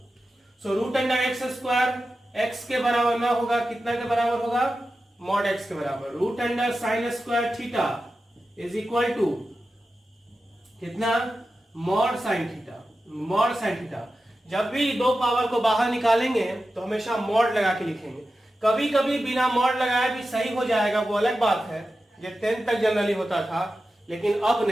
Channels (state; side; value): normal; both; correlation 0.92